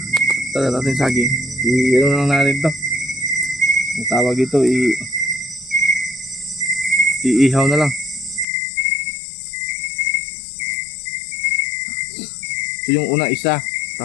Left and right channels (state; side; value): drops out; right; at 8.5 s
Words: tala natin saging, i-ano lang natin to, ang tawag dito, iihaw na lang. So yung una isa,